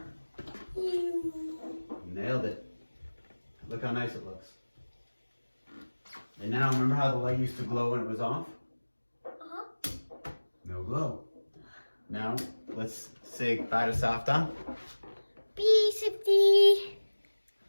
Nailed it. Look how nice it looks. And now remember how the light used to glow when it was off? Uh-huh. No glow. Now let's say bye to Safta. Peace.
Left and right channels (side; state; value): both; inverted; correlation -1.00